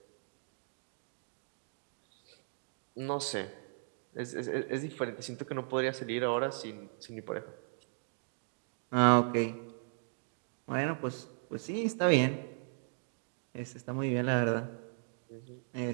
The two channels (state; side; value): silent; left; 53 dB below the other